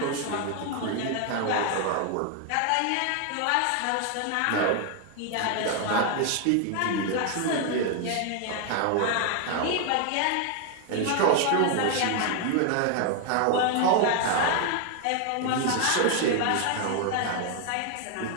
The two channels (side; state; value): both; different; correlation 0.00